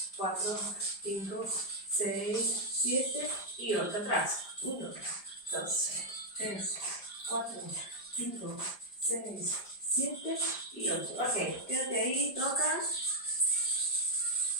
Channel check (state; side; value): late; right; 5.0 ms